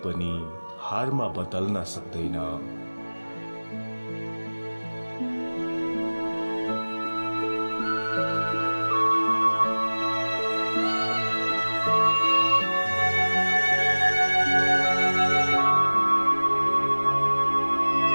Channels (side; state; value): both; inverted; correlation -1.00